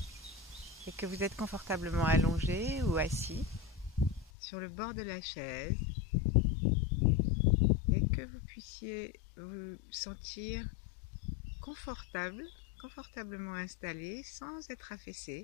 et que vous êtes confortablement allongé ou assis sur le bord de la chaise et que vous puissiez vous sentir confortablement installé sans être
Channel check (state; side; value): drops out; right; at 4.3 s